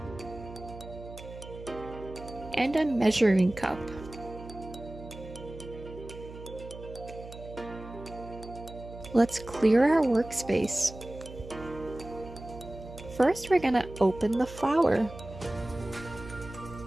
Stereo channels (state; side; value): noise; right; hum, 14 dB below the sound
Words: and a measuring cup. Let's clear our workspace. First, we're gonna open the flour.